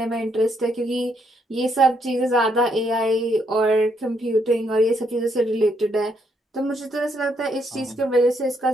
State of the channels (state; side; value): normal; both; correlation 0.73